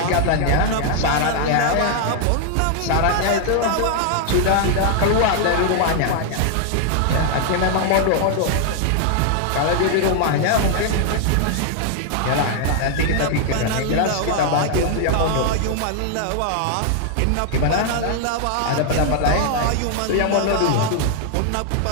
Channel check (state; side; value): different; both; correlation 0.00